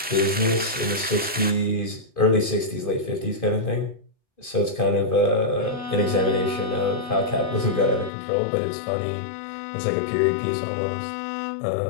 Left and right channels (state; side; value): drops out; right; at 8.1 s